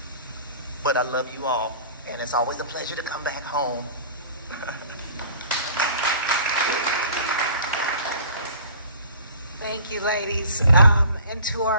But I love you all, and it's always a pleasure to come back home. Thank you, ladies. And to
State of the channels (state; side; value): inverted; both; correlation -0.47